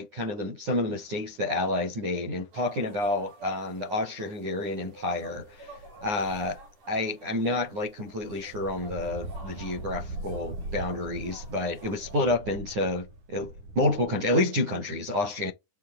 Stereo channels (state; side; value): late; left; 9.7 ms